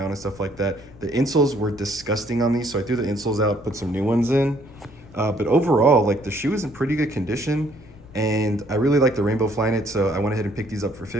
and stuff like that. The insoles were disgusting on these, so I threw the insoles out, put some new ones in. But overall, like, the shoe is in pretty good condition, and I really like the Rainbow Flyknit, so I went ahead and picked these up for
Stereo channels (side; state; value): left; noise; rumble, 21 dB below the sound